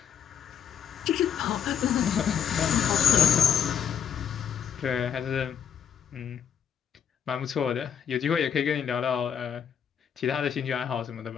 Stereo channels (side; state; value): right; quieter; 8.2 dB